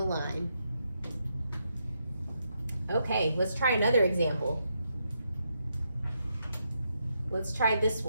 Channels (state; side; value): inverted; both; correlation -0.81